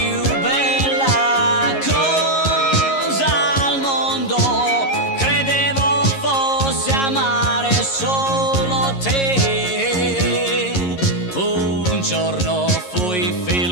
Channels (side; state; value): right; late; 11 ms